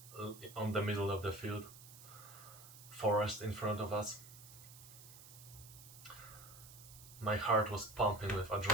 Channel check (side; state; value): right; noise; hiss, 17 dB below the sound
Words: on the middle of the field, forest in front of us. My heart was pumping with